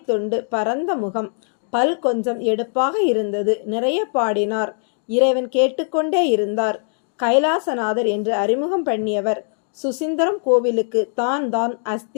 பரந்த முகம், பல் கொஞ்சம் எடுப்பாக இருந்தது. நிறைய பாடினார். இறைவன் கேட்டுக்கொண்டே இருந்தார். கைலாசநாதர் என்று அறிமுகம் பண்ணியவர் சுசீந்திரம் கோவிலுக்கு தான்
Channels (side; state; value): right; silent; 65 dB below the other